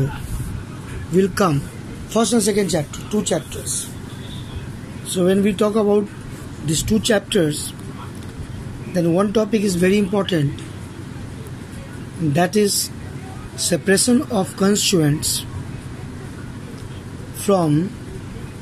will come first and second chapter, 2 chapters. So when we talk about these 2 chapters, then one topic is very important, that is separation of constituents from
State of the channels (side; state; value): both; identical; correlation 1.00